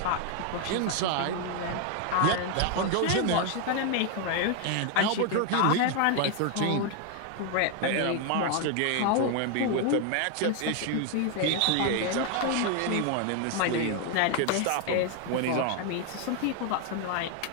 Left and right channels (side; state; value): both; different; correlation 0.01